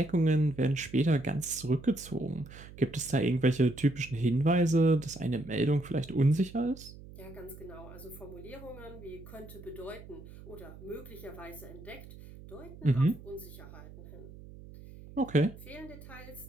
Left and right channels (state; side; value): noise; right; hum, 17 dB below the sound